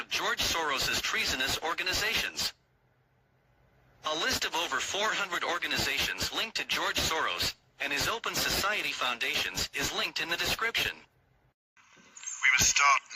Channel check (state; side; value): identical; both; correlation 1.00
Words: George Soros's treasonous organizations. A list of over 400 organizations linked to George Soros and his Open Society foundations is linked in the description. We must start